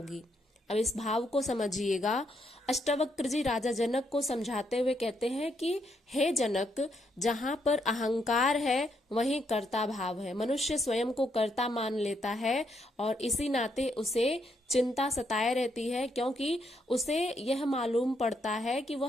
अब इस भाव को समझिएगा। अष्टावक्र जी राजा जनक को समझाते हुए कहते हैं कि हे जनक, जहां पर अहंकार है वहीं कर्ता भाव है। मनुष्य स्वयं को कर्ता मान लेता है और इसी नाते उसे चिंता सताए रहती है, क्योंकि उसे यह मालूम पड़ता है कि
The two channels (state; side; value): normal; both; correlation 0.76